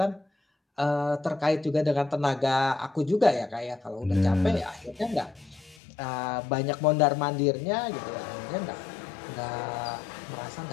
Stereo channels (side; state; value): right; drops out; at 5.8 s